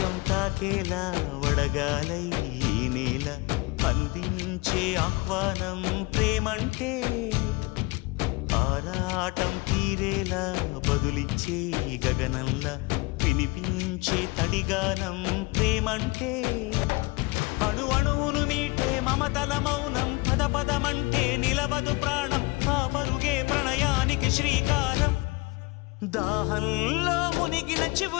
తాకేలా వడగాలై ఈ నేల అందించే ఆహ్వానం ప్రేమంటే ఆరాటం తీరేలా బదులిచ్చే గగనంలా వినిపించే తడిగానం ప్రేమంటే అణు అణువును మీటే మమతల మౌనం పద పదమంటే నిలవదు ప్రాణం ఆ పరుగే ప్రణయానికి శ్రీకారం దాహంలో మునిగిన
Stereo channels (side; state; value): right; quieter; 24.7 dB